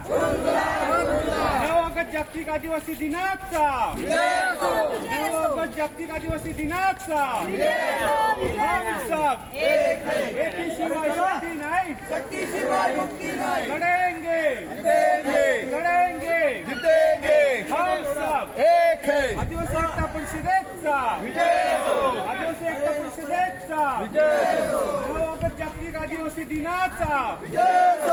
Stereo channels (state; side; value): identical; both; correlation 1.00